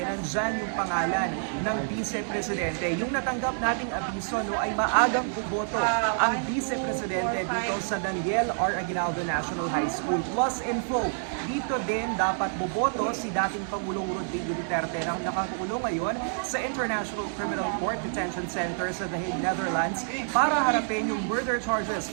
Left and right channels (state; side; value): silent; left; digital silence